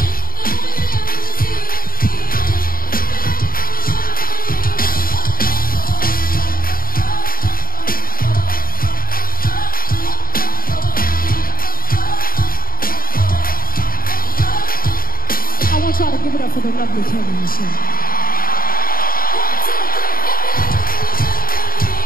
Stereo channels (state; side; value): late; right; 0.42 ms